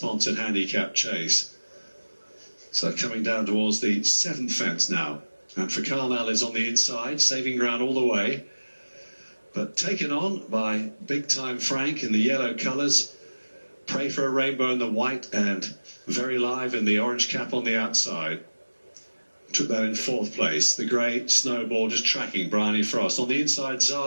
handicap chase. So coming down towards the 7th fence now. And for Carmel is on the inside, saving ground all the way. But taken on by Big Time Frank in the yellow colours. Pray for a Rainbow in the white and Very Live in the orange cap on the outside. Took that in 4th place. The grey Snowball just tracking Bryony Frost. On the inside,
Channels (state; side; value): inverted; both; correlation -1.00